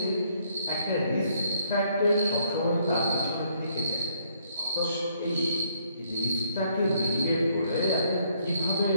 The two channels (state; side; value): inverted; both; correlation -0.68